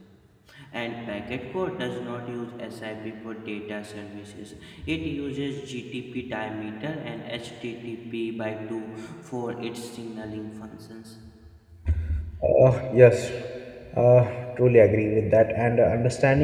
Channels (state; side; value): identical; both; correlation 1.00